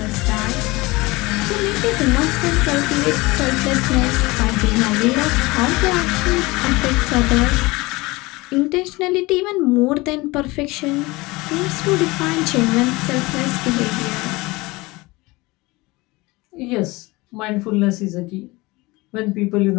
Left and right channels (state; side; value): quieter; right; 22.4 dB